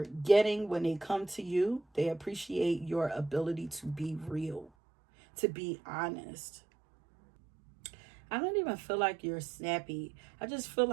getting when they come to you. They appreciate your ability to be real, to be honest. I don't even feel like you're snappy. I just feel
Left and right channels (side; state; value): left; drops out; at 4.7 s